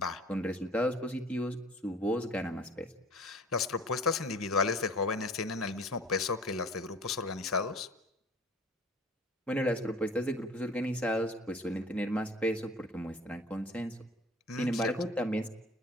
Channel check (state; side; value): normal; both; correlation 0.46